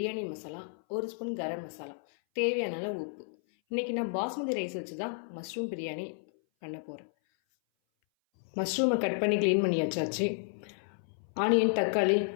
மசாலா, 1 ஸ்பூன் கரம் மசாலா, தேவையான அளவு உப்பு. இன்றைக்கி நான் பாஸ்மதி ரைஸ் வச்சு தான் மஷ்ரூம் பிரியாணி பண்ண போகிறேன். மஷ்ரூமை கட் பண்ணி க்ளீன் பண்ணி வச்சாச்சு. ஆனியன், தக்காளி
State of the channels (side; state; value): right; silent; 57 dB below the other